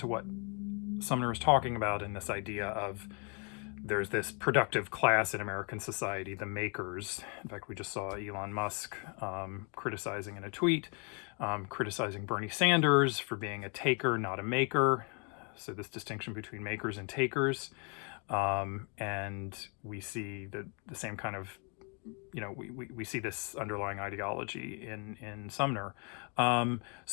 Sumner is talking about in this idea of there's this productive class in American society, the makers. In fact, we just saw Elon Musk criticizing in a tweet, criticizing Bernie Sanders for being a taker, not a maker. So this distinction between makers and takers. And we see the same kind of, we see this underlying ideology in Sumner.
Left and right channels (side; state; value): right; quieter; 36.2 dB